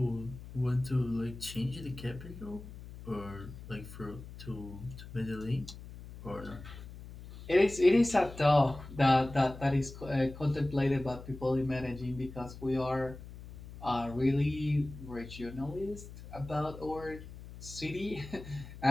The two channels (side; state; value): left; noise; hum, 14 dB below the sound